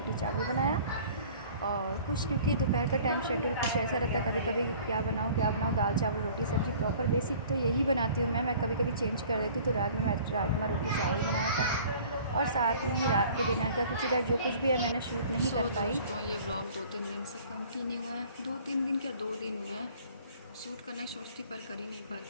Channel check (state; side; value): inverted; both; correlation -0.50